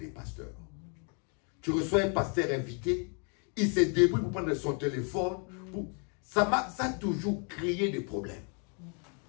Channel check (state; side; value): quieter; right; 38.7 dB